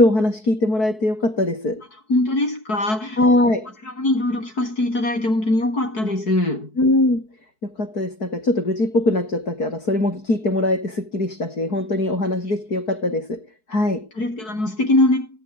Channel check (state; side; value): late; right; 4.6 ms